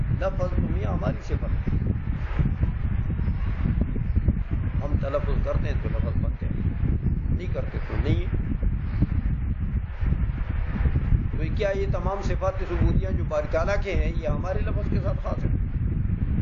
لفظ تمہیں ہماری صفت ہے، ہم تلفظ کرتے ہیں تو لفظ بنتے ہیں، نہیں کرتے تو نہیں۔ تو کیا یہ تمام صفات ثبوتیہ جو باری تعالیٰ کے ہیں یہ ہمارے لفظ کے ساتھ خاص ہے؟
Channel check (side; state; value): both; identical; correlation 1.00